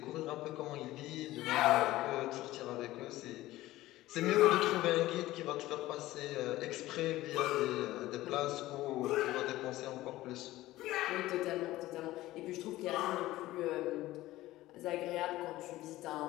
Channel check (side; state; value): right; quieter; 16.6 dB